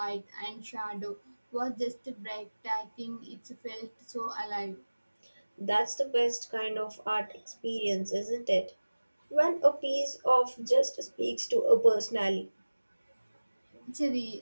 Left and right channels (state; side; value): inverted; both; correlation -1.00